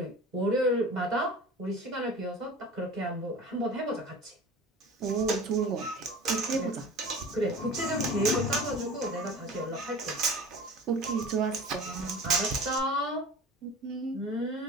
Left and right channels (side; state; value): both; normal; correlation 0.39